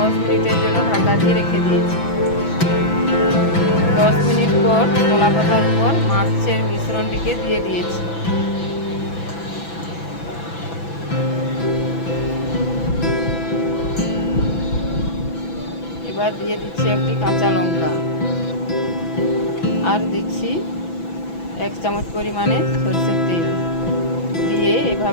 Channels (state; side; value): late; right; 6.0 ms